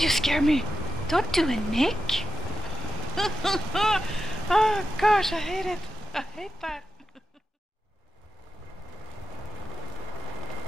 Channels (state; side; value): normal; both; correlation 0.88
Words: you scare me! Don't do it, Nick! Oh, gosh, I hate it. I hate that.